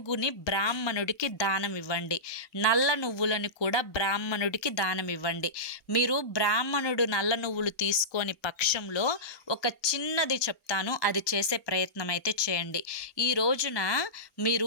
బ్రాహ్మణుడికి దానం ఇవ్వండి. నల్ల నువ్వులను కూడా బ్రాహ్మణుడికి దానం ఇవ్వండి. మీరు బ్రాహ్మణుడు నల్ల నువ్వులు తీసుకొని పక్షంలో ఒక చిన్నది చెప్తాను, అది చేసే ప్రయత్నం అయితే చేయండి. ఈ రోజున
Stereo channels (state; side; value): late; right; 1.2 ms